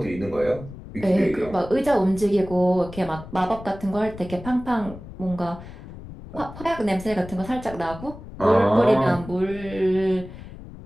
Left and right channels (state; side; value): noise; left; rumble, 14 dB below the sound